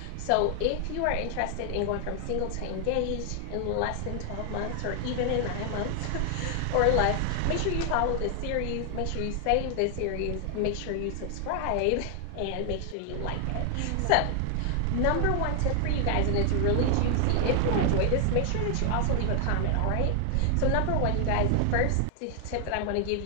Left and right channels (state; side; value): different; both; correlation 0.00